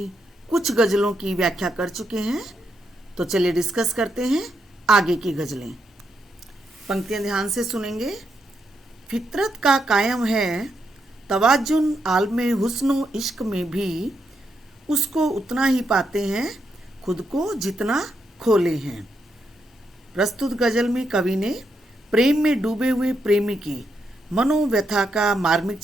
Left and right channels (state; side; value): normal; both; correlation 0.81